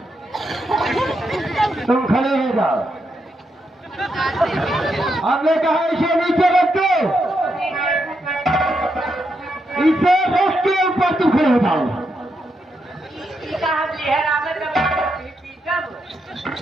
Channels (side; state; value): both; normal; correlation 0.82